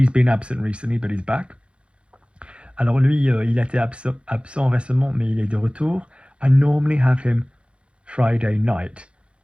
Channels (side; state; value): left; late; 0.058 ms